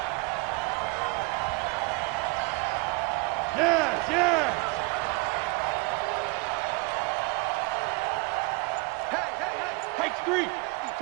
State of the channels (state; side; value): quieter; left; 28.3 dB